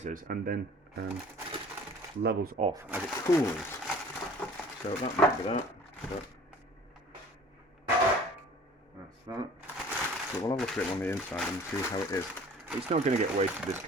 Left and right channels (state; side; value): normal; both; correlation 0.48